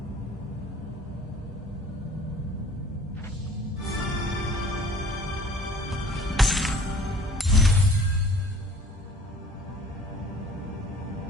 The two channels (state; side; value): normal; both; correlation 0.50